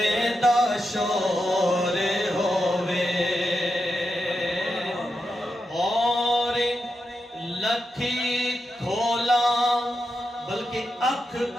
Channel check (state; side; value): normal; both; correlation 0.86